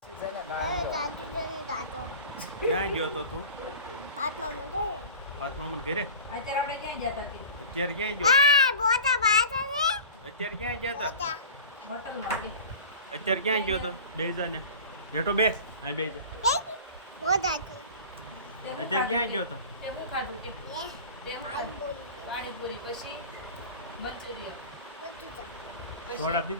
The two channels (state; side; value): inverted; both; correlation -0.37